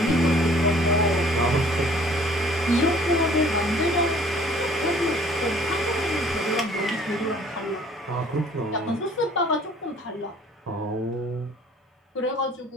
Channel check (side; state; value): both; normal; correlation 0.55